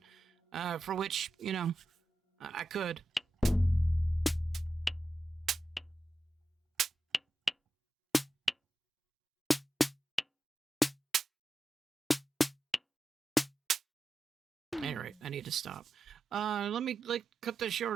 For which I could. Anyway, I need to stop. Let me cut this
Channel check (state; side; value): normal; both; correlation 0.90